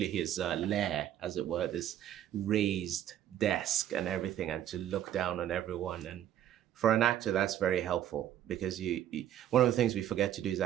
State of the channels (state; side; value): quieter; left; 11.1 dB